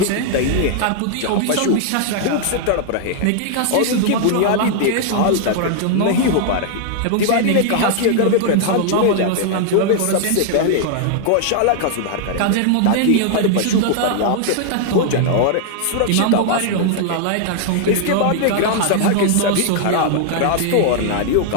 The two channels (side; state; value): both; different; correlation -0.01